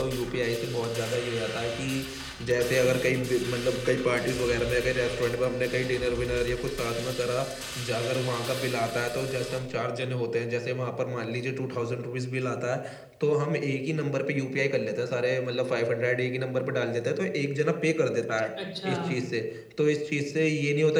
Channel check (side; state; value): both; identical; correlation 1.00